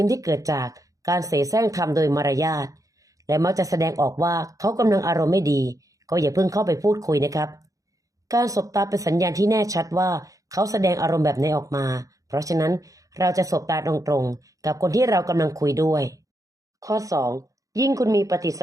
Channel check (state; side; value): late; left; 0.16 ms